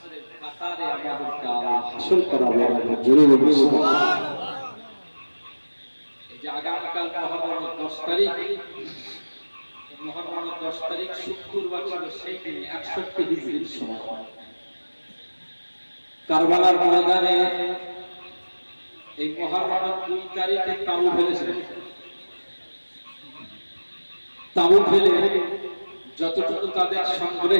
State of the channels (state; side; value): inverted; both; correlation -1.00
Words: কাতারে আমাদেরকে আল্লাহ হাসর করাবে। জোরে বলুন সুবহানাল্লাহ। এই যে আগামীকাল মুহররমের 10 তারিখ, মুহররমের 10 তারিখ শুক্রবার ছিল, সেই দিন 61 হিজরির সময় কারবালার ময়দানে এই মুহররমের 2 তারিখে তাবু ফেলেছিলেন। তাবু ফেলে যতটুকু তাদের